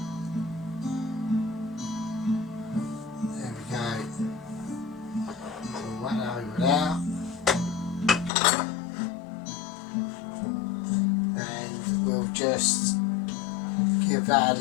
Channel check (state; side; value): drops out; right; at 8.3 s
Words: out, and we'll just give that a